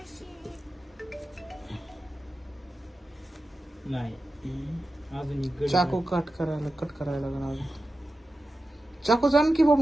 नाही अजून एक गडी चाकू कट करायला लागणार. चाकू जाण की बाब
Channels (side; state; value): both; normal; correlation 0.92